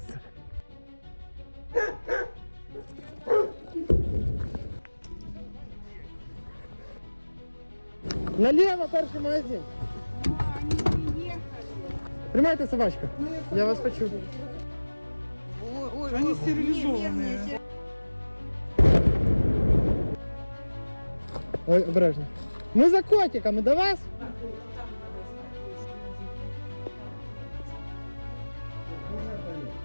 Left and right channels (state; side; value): inverted; both; correlation -1.00